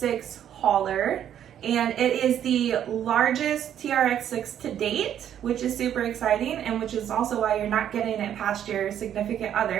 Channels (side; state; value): left; quieter; 10.1 dB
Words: hauler, and it is the largest TRX6 to date, which is super exciting, and which is also why you're not getting it past your significant